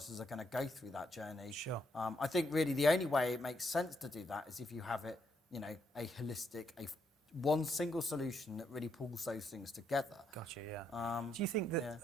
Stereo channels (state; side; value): normal; both; correlation 0.77